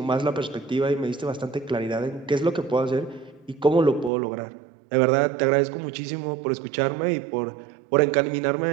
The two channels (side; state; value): left; drops out; at 4.1 s